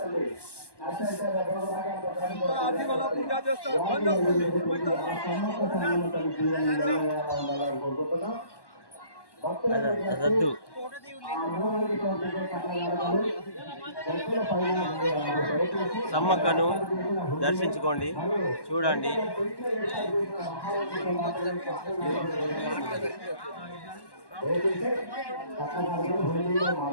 అదద్దు సమ్మక్కను దర్శించుకోండి, చూడండి.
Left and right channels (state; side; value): late; right; 1.1 ms